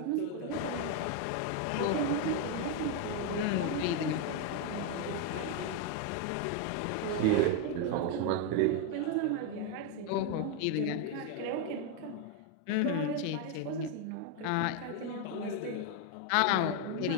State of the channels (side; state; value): both; different; correlation 0.01